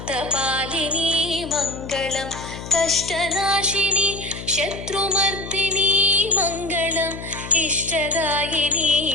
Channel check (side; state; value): left; noise; hum, 11 dB below the sound